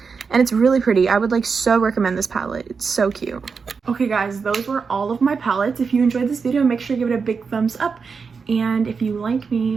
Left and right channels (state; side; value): quieter; left; 5.3 dB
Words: And it's really pretty. I would like so recommend this palette. It's so cute. Okay guys, those were all of my palettes. If you enjoyed this video, make sure to give it a big thumbs up. And if you like me,